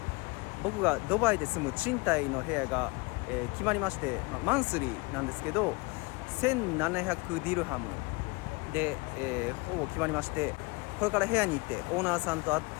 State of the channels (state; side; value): quieter; right; 26.4 dB